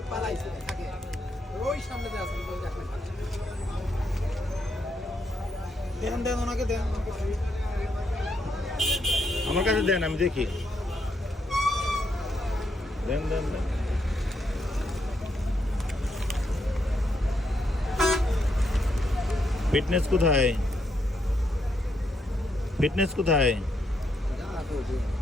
পালাইছে থাকে ওই সামনে যে আছে ওই দেখেন দেন দেন ওনাকে দেন আমার কাছে দেন, আমি দেখি। দেন দেন দেন। ফিটনেস কোথায়? ফিটনেস কোথায়? যা তো দিন,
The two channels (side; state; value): both; normal; correlation 0.78